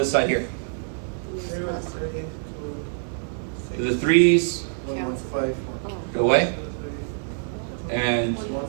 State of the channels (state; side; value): silent; left; 62 dB below the other